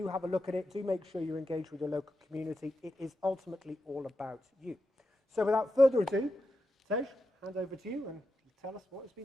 have a look at it. Do make sure you engage with your local community. It is ultimately all about you. So without further ado, Tej, hand over to you and tell us what has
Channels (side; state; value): both; normal; correlation 0.88